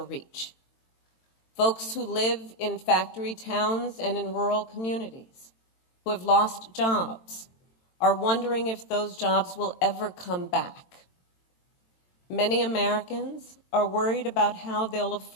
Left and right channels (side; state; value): right; late; 22 ms